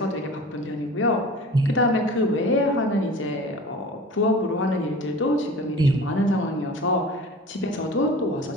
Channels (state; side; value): normal; both; correlation 0.39